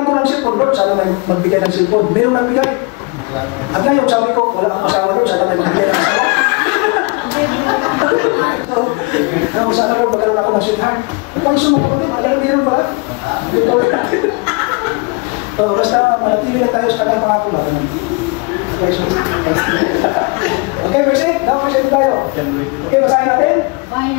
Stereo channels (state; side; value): quieter; right; 29.3 dB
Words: ko ng cellphone, Lord, sana may magbigay ng cellphone. Mayroong nagbigay. At ngayon, sabi ko, wala akong asawa, Lord, sana may magbigay ng asawa. Kung sana Lord, magkaroon ako ng sweetheart. Pag sumagot, magkaroon meron pala. Basta manatili lang tayo sa kanyang pangako na. Okay, verse 8. Now, verse 8 tayo. Okay, basahin natin.